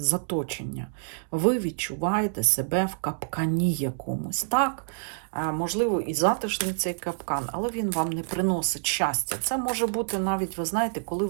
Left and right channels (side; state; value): left; silent; digital silence